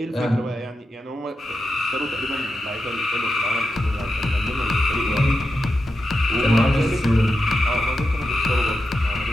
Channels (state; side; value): normal; both; correlation 0.89